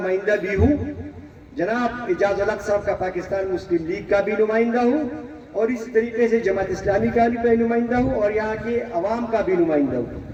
بھی ہوں، جناب اعجاز الحق صاحب کا پاکستان مسلم لیگ کا بھی نمائندہ ہوں، اور اس طریقے سے جماعت اسلامی کا بھی نمائندہ ہوں، اور یہاں کے عوام کا بھی نمائندہ ہوں۔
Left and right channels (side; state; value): both; identical; correlation 1.00